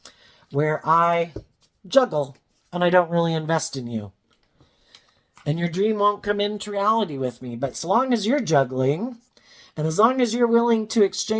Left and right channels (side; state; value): both; identical; correlation 1.00